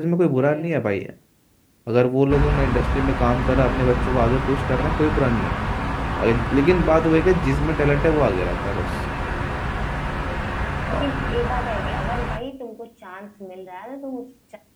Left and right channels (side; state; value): both; identical; correlation 1.00